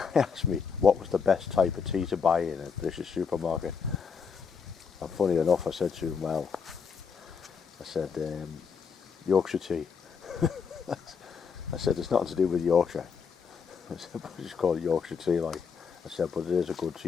asked me what was the best type of tea to buy in a British supermarket. And funny enough, I said to him, well, I said, Yorkshire tea. I said, it's nothing to do with Yorkshire. I said, but it's called Yorkshire tea, like. I said, but it is a good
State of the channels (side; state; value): right; quieter; 6.0 dB